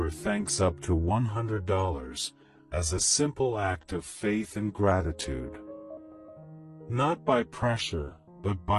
thanks up to $100 as a simple act of faith and gratitude. Not by pressure, but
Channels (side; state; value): both; identical; correlation 1.00